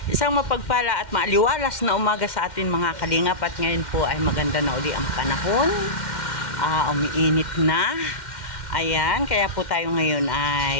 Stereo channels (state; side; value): late; right; 2.1 ms